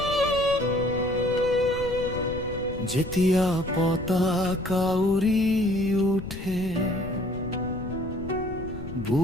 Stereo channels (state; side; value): noise; left; rumble, 11 dB below the sound